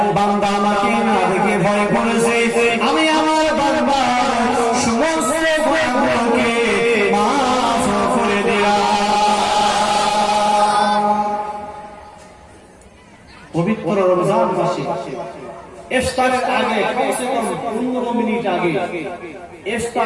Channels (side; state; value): both; identical; correlation 1.00